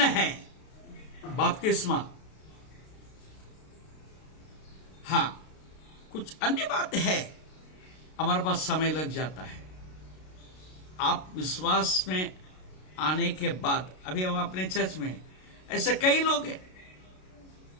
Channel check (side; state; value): right; late; 32 ms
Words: है बपतिस्मा। हां, कुछ अन्य बात है, हमारे पास समय लग जाता है। आप विश्वास में आने के बाद, अभी हम अपने चर्च में ऐसे कई लोग हैं,